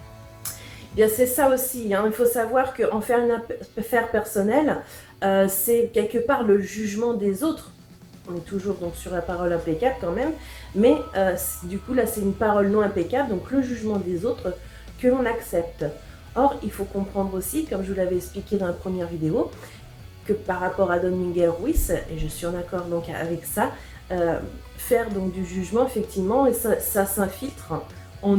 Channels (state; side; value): identical; both; correlation 1.00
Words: Bien, c'est ça aussi, hein. Il faut savoir qu'en faire une affaire personnelle, c'est quelque part le jugement des autres. On est toujours donc sur la parole impeccable quand même, mais du coup là c'est une parole non impeccable, donc le jugement des autres que l'on accepte. Or, il faut comprendre aussi, comme je vous l'avais expliqué dans la première vidéo, que par rapport à Don Miguel Ruiz, et je suis en accord donc avec ça, faire donc du jugement effectivement et ça s'infiltre en